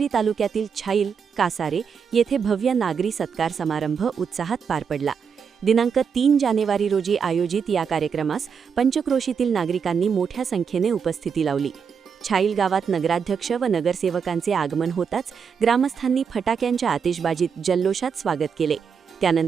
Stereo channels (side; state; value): left; quieter; 6.6 dB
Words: तालुक्यातील चाईल कासारे येथे भव्य नागरी सत्कार समारंभ उत्साहात पार पडला। दिनांक 3 जानेवारी रोजी आयोजित या कार्यक्रमास पंचक्रोशीतील नागरिकांनी मोठ्या संख्येने उपस्थिती लावली। चाईल गावात नगराध्यक्ष व नगरसेवकांचे आगमन होताच ग्रामस्थांनी फटाक्यांच्या आतिषबाजीत जल्लोषात स्वागत केले।